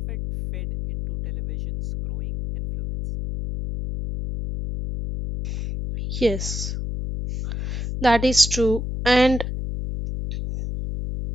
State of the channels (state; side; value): noise; left; hum, 5 dB below the sound